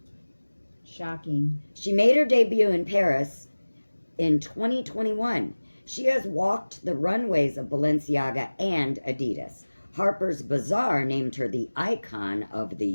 Shocking. She made her debut in Paris in 2021. She has walked the runways of Balenciaga and Adidas. Harper's Bazaar named her the icon of the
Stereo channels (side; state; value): both; inverted; correlation -1.00